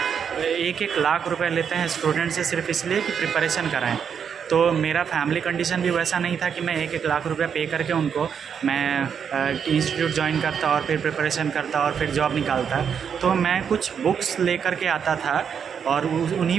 1-1 लाख रुपए लेते हैं स्टूडेंट से सिर्फ इसलिए कि प्रिपरेशन कराएं। तो मेरा फैमिली कंडीशन भी वैसा नहीं था कि मैं 1-1 लाख रुपए पे करके उनको मैं इंस्टीट्यूट ज्वाइन करता और फिर प्रिपरेशन करता और फिर जॉब निकालता। तो मैं कुछ बुक्स लेकर के आता था और उन्हीं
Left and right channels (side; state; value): left; quieter; 7.3 dB